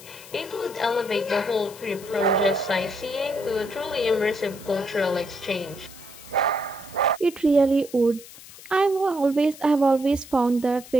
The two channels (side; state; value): left; noise; hiss, 18 dB below the sound